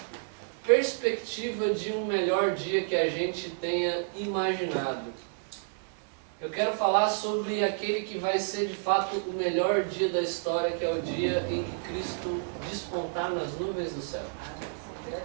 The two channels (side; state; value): left; silent; 58 dB below the other